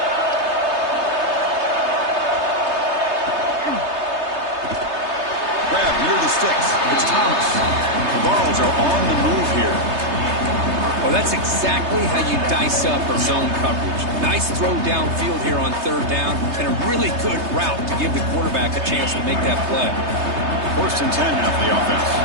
Grab near the sticks. It's Thomas. The Vols are on the move here. Well, that's exactly how you dice up a zone coverage. Nice throw downfield here on third down, and a really good route to give the quarterback a chance to make that play. First and 10 now for the offense.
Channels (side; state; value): left; late; 3.3 ms